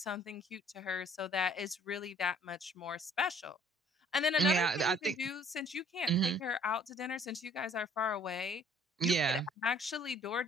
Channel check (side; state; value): both; normal; correlation 0.57